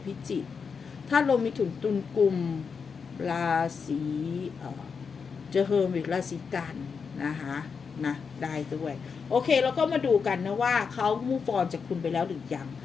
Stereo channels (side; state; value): right; quieter; 5.8 dB